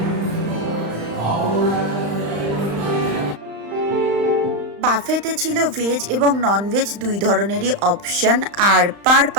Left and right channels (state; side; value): late; left; 35 ms